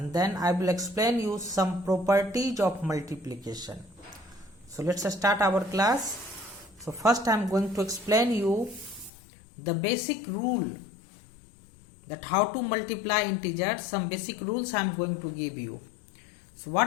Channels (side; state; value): right; drops out; at 9.1 s